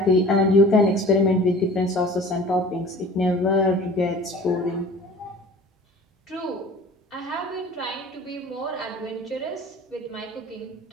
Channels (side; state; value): both; normal; correlation 0.44